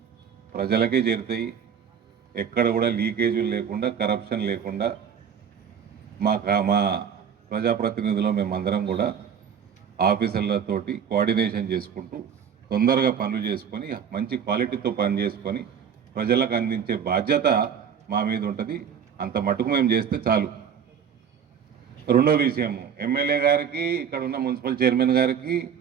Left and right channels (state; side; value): quieter; left; 7.6 dB